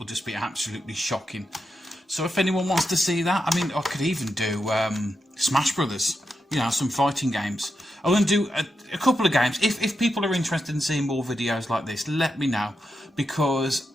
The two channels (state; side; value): normal; both; correlation 0.86